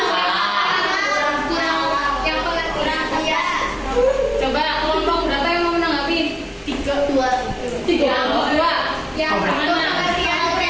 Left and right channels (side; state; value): both; identical; correlation 1.00